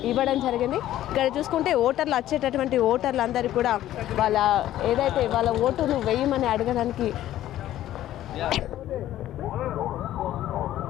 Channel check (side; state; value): right; quieter; 13.2 dB